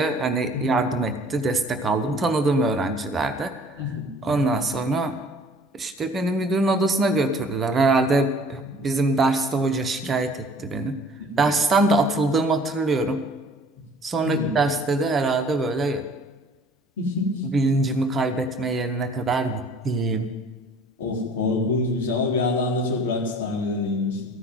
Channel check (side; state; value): both; normal; correlation 0.52